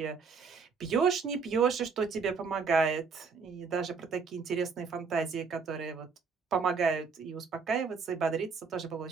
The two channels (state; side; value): quieter; left; 5.3 dB